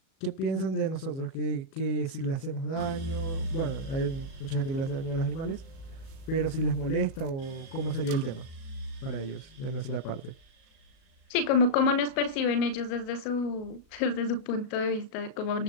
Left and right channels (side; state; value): right; late; 37 ms